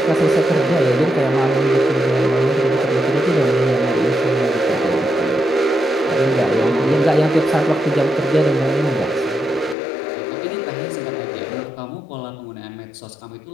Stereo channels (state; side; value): drops out; right; at 9.8 s